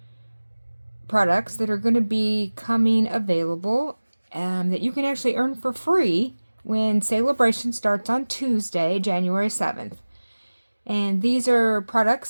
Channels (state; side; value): inverted; both; correlation -1.00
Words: products that are going to be coming available that you can actually earn for free when Sale-A-Bration starts on Tuesday, January 7th. And these are products